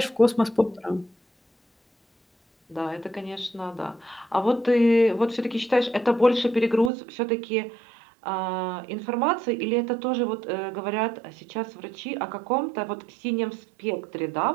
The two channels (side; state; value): left; drops out; at 6.9 s